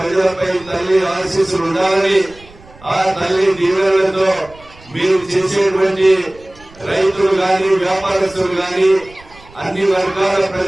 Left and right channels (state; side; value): noise; right; rumble, 24 dB below the sound